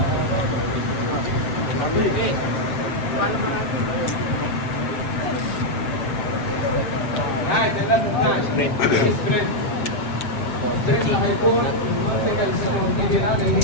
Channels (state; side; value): late; right; 7.9 ms